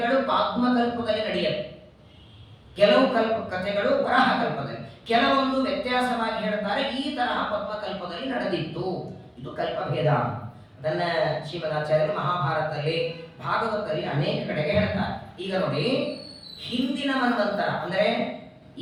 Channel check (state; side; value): identical; both; correlation 1.00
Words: ಪಾತ್ಮ ಕಲ್ಪದಲ್ಲಿ ನಡೆಯುತ್ತೆ, ಕೆಲವು ಕಥೆಗಳು ವರಾಹ ಕಲ್ಪದಲ್ಲಿ. ಕೆಲವೊಂದು ವ್ಯತ್ಯಾಸವಾಗಿ ಹೇಳ್ತಾರೆ, ಈ ತರಹ ಪದ್ಮಕಲ್ಪದಲ್ಲಿ ನಡೆದಿತ್ತು. ಇದು ಕಲ್ಪಭೇದ. ಅದನ್ನ ಶ್ರೀಮದಾಚಾರ್ಯರು ಮಹಾಭಾರತದಲ್ಲಿ, ಭಾಗವತದಲ್ಲಿ ಅನೇಕ ಕಡೆಗೆ ಹೇಳ್ತಾರೆ. ಈಗ ನೋಡಿ, ಹಿಂದಿನ ಮನ್ವಂತರ ಅಂದ್ರೆ